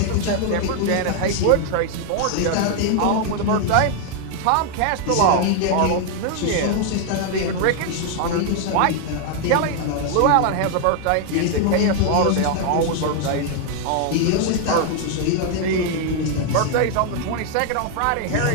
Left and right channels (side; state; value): both; different; correlation 0.00